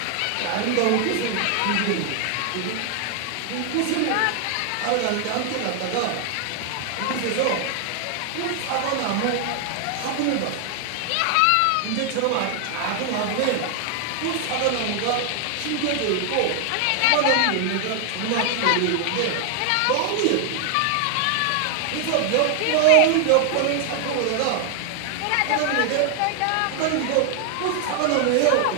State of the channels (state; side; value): different; both; correlation 0.00